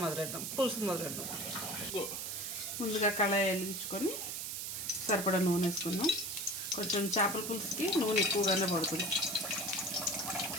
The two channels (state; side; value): noise; right; hiss, 4 dB below the sound